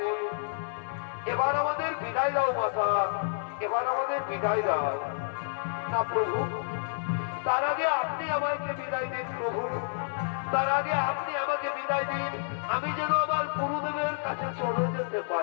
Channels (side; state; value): right; silent; digital silence